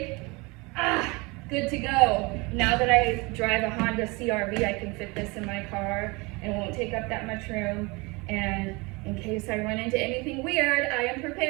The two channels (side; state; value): left; quieter; 26.2 dB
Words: Good to go. Now that I drive a Honda CR-V, I can fit this in my car and it won't take up that much room. And in case I run into anything weird, I am